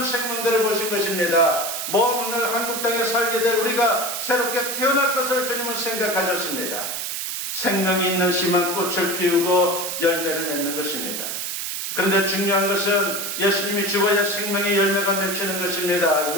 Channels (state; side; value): noise; right; hiss, 4 dB below the sound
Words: 생명들을 보신 것입니다. 먼 오늘 한국 땅에 살게 될 우리가 새롭게 태어날 것을 주님은 생각하셨습니다. 생명이 있는 씨만 꽃을 피우고 열매를 맺는 것입니다. 그런데 중요한 것은 예수님이 죽어야 생명의 열매가 맺히는 것입니다.